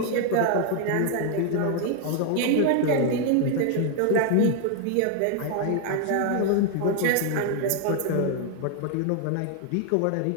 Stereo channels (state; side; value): different; both; correlation 0.00